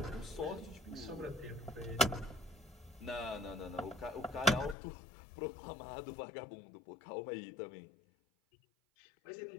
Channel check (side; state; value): right; drops out; at 4.8 s